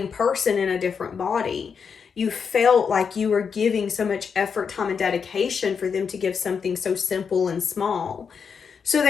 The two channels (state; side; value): quieter; right; 6.3 dB